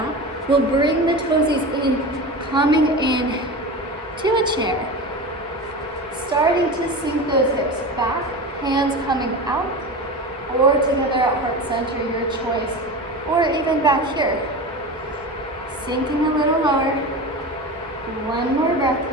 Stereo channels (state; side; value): normal; both; correlation 0.28